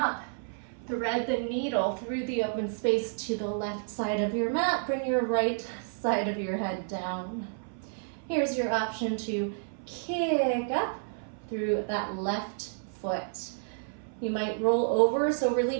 Thread the needle through the open space to the left side of your mat. Bring your right side of your head down. Here's your option to kick up through that left foot. You might roll over, so really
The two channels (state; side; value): silent; left; 58 dB below the other